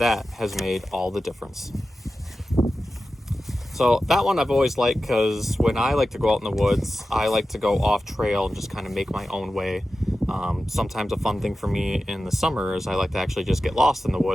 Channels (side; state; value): both; normal; correlation 0.93